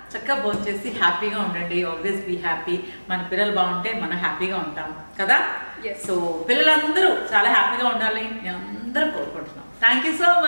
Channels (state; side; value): inverted; both; correlation -1.00